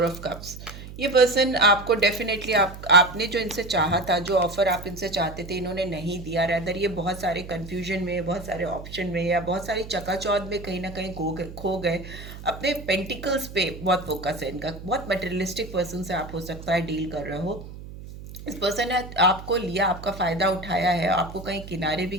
ऑफ कप्स। ये पर्सन आपको डेफिनेटली, आपने जो इनसे चाहा था, जो ऑफर आप इनसे चाहते थे, इन्होंने नहीं दिया। रैदर ये बहुत सारे कंफ्यूजन में, बहुत सारे ऑप्शन में या बहुत सारी चकाचौंध में कहीं ना कहीं खो गए। अपने पेंटिकल्स पे बहुत फोकस है इनका। बहुत मटेरियलिस्टिक पर्सन से आप हो सकता है डील कर रहे हो। इस पर्सन ने आपको लिया, आपका फ़ायदा उठाया है, आपको कहीं किनारे भी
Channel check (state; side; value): noise; right; hum, 13 dB below the sound